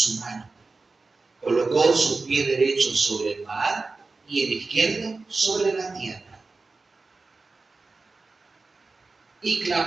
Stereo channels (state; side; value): quieter; left; 3.8 dB